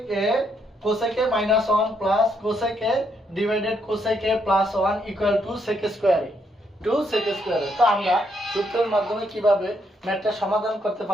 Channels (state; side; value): normal; both; correlation 0.75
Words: A -1 plus cosec A divided cosec A plus 1 equal to sec স্কয়ারে। তো আমরা সূত্রের মাধ্যমে কিভাবে ম্যাথটা সমাধান করতে